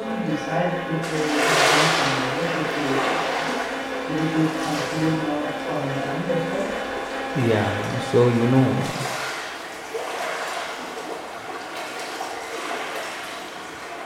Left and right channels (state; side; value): identical; both; correlation 1.00